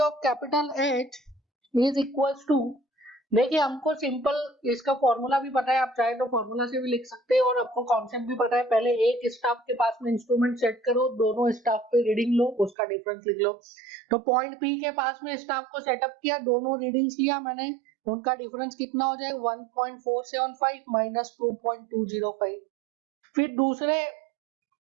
of capital H is equals to, देखिए हमको सिंपल इसका फॉर्मूला भी पता है, आप चाहे तो फॉर्मूला से भी लिख सकते हैं, और आपको कॉन्सेप्ट भी पता है। पहले एक स्टाफ के पास में इंस्ट्रूमेंट सेट करो, दोनों स्टाफ पे रीडिंग लो, उसका डिफरेंस लिख लो। तो पॉइंट P के पास में स्टाफ को सेटअप किया, दोनों रीडिंग्स लिया मैंने उनका डिफरेंस कितना हो जाएगा 1.475 माइनस 2.205। फिर दूसरे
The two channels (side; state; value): left; drops out; at 12.8 s